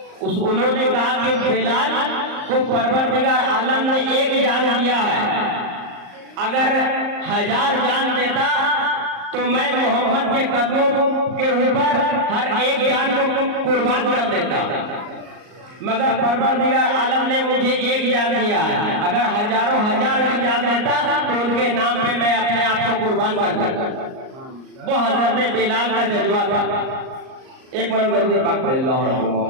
उन्होंने कहा कि बिलाल को परवरदिगार आलम ने एक जान दिया है, अगर 1000 जान देता तो मैं मोहम्मद के कदमों के ऊपर हर एक जान को कुर्बान कर देता, मगर परवरदिगार आलम ने मुझे एक जान दिया है। अगर हजारों हजार की जान देता तो उनके नाम पे मैं अपने आप को कुर्बान कर देता। वो हजरत बिलाल का जज्बा था। एक मिनट दरूद पाक पढ़े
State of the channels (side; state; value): left; late; 38 ms